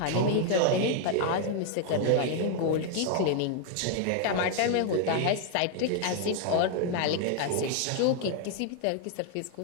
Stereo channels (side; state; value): both; different; correlation 0.00